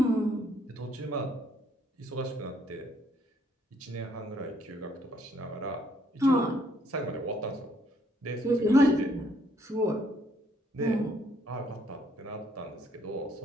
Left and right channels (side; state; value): both; normal; correlation 0.67